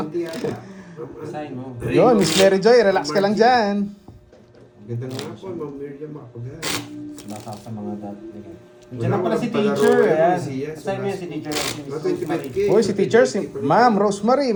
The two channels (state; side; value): identical; both; correlation 1.00